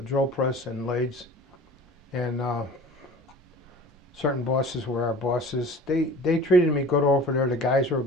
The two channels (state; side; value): normal; both; correlation 0.42